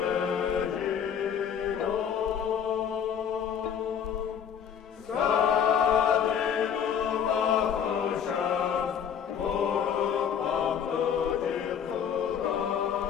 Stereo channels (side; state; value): right; quieter; 8.1 dB